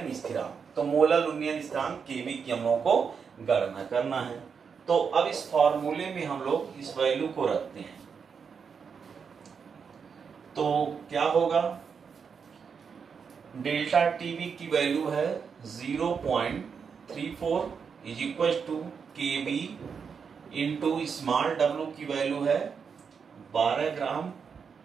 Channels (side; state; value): left; quieter; 6.2 dB